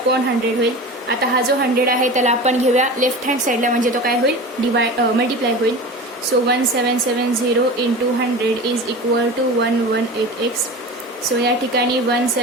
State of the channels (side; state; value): both; normal; correlation 0.32